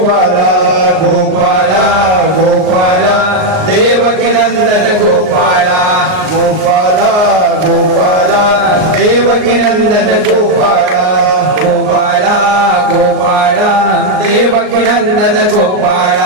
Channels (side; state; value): left; late; 38 ms